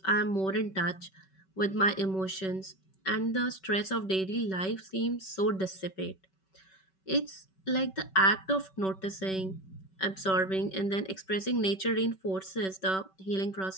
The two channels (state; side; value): late; right; 5.3 ms